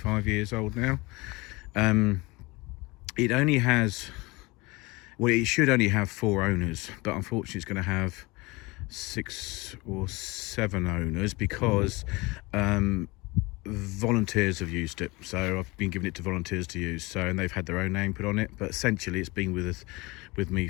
years old now. It only has, well, it should only have 4 owners, but unfortunately it's going to have 6 or 7 owners because volunteers have used it. So I've been giving it to volunteers to use, and they've had their own name put on it, but essentially it's been with me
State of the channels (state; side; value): quieter; right; 23.8 dB